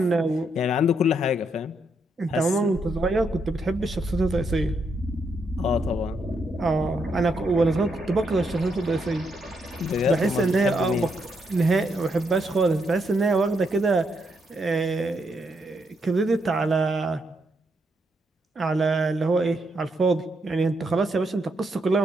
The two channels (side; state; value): both; normal; correlation 0.78